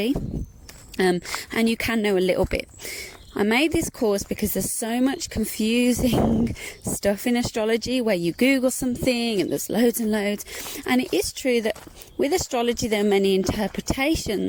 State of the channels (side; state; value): both; identical; correlation 1.00